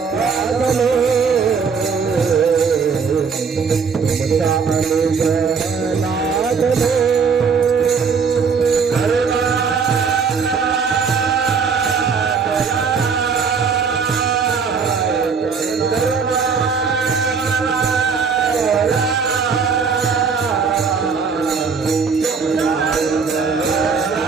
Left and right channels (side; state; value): left; quieter; 5.6 dB